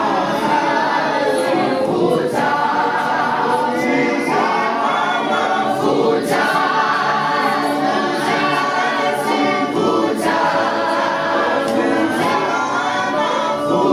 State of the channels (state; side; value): identical; both; correlation 1.00